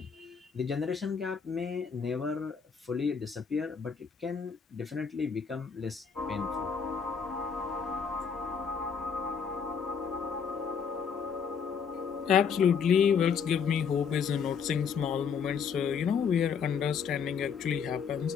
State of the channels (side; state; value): right; quieter; 6.5 dB